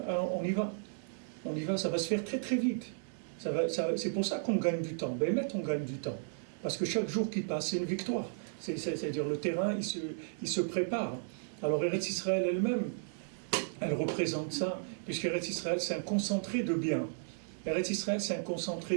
y va. On y va, ça va se faire très très vite. C'est pour ça qu'on gagne du temps. Ben, on gagne du temps. Parce que chaque jour qui passe, c'est une victoire. C'est-à-dire le terrain, il se prépare. Alors Eretz Israël elle-même, elle représente ça, puisque Eretz Israël, c'est un concentré de bien. Eretz Israël, c'est un concentré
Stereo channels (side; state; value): left; silent; digital silence